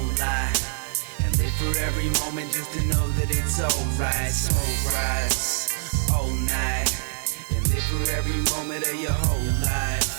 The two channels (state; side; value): silent; left; digital silence